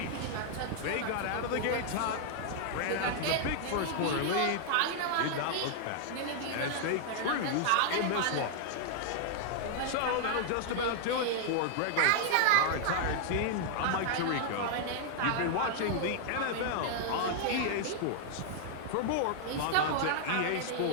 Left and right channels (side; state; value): both; different; correlation -0.01